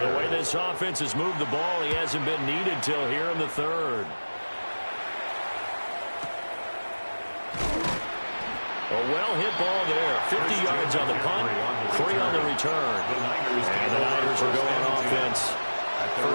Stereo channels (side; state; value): both; inverted; correlation -1.00